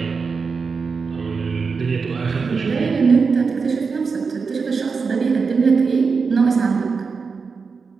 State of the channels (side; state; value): left; quieter; 5.0 dB